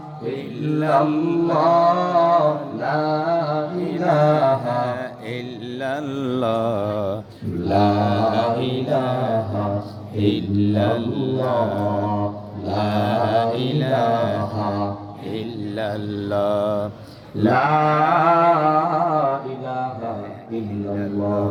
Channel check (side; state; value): both; identical; correlation 1.00